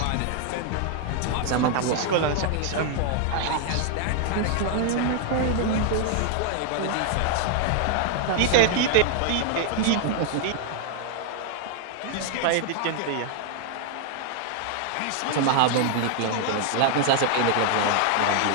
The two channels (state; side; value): different; both; correlation 0.00